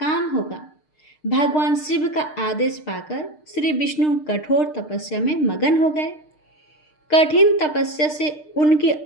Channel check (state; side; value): late; right; 6.6 ms